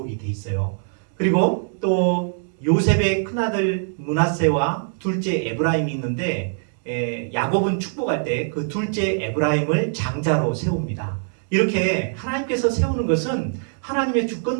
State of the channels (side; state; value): left; silent; digital silence